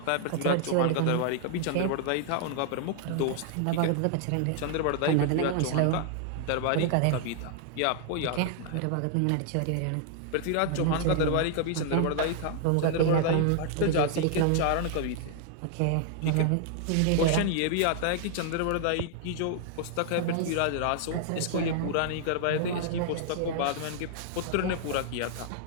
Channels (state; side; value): different; both; correlation 0.00